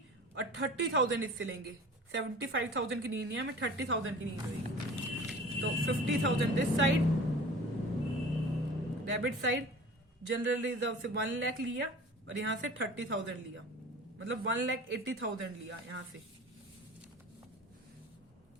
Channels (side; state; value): both; normal; correlation 0.41